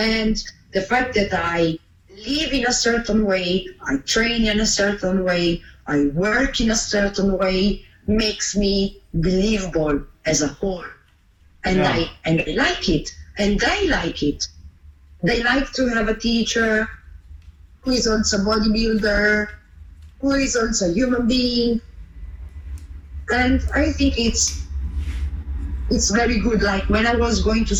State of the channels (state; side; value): identical; both; correlation 1.00